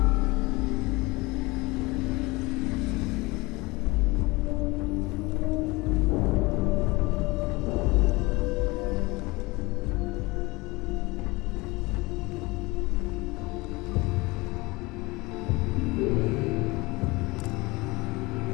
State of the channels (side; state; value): right; quieter; 23.4 dB